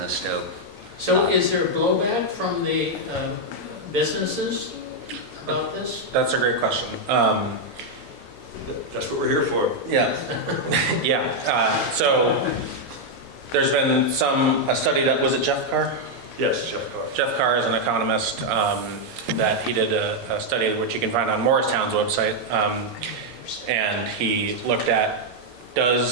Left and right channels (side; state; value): both; normal; correlation -0.01